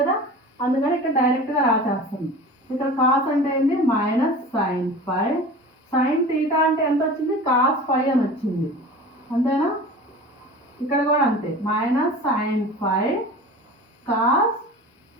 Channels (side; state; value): both; normal; correlation 0.37